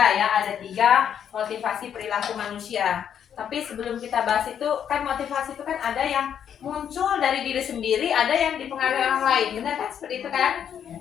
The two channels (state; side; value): quieter; right; 8.8 dB